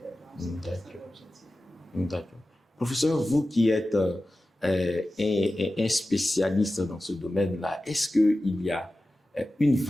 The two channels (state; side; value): normal; both; correlation 0.95